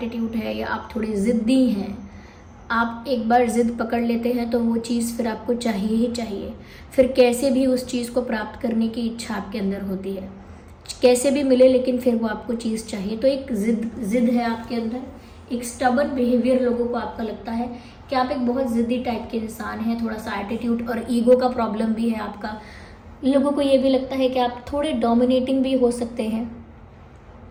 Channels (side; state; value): both; identical; correlation 1.00